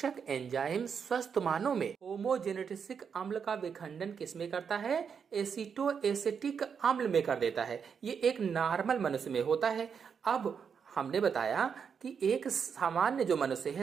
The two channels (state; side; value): quieter; left; 6.7 dB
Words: एंजाइम स्वस्थ मानव में होमोजेनेटिसिक अम्ल का विखंडन किसमें करता है? एसीटो एसिटिक अम्ल में कर देता है। ये एक नॉर्मल मनुष्य में होता है। अब हमने बताया कि एक सामान्य जो मनुष्य